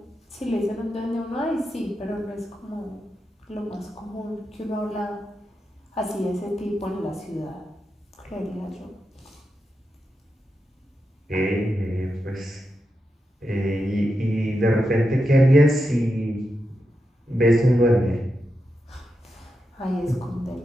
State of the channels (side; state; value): both; normal; correlation 0.87